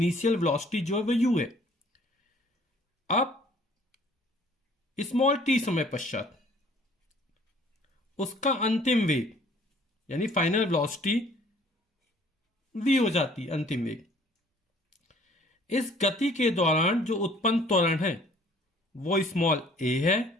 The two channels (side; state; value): both; normal; correlation 0.56